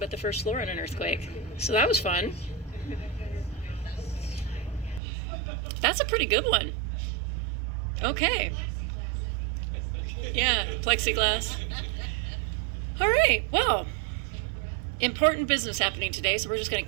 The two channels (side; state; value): left; drops out; at 5.0 s